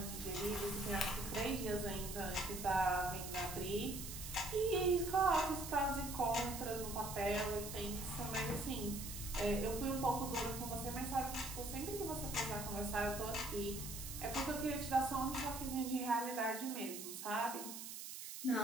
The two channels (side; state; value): right; noise; hiss, 8 dB below the sound